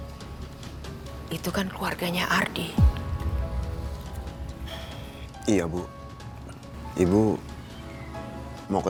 itu kan keluarganya Ardi. Iya, Bu. Ibu mau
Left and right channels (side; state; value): both; identical; correlation 1.00